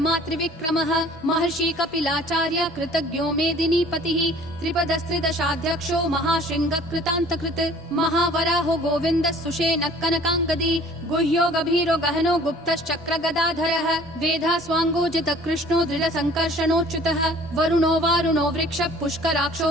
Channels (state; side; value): normal; both; correlation 0.51